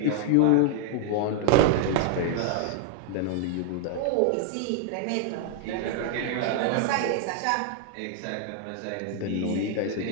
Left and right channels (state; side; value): different; both; correlation 0.00